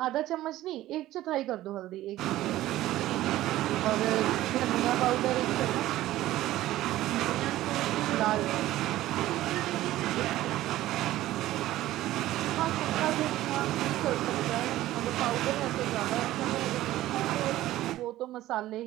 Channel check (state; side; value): quieter; left; 15.2 dB